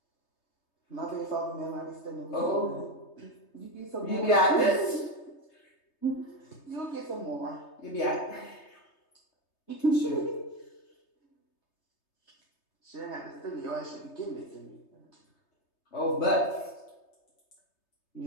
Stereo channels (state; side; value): late; right; 3.3 ms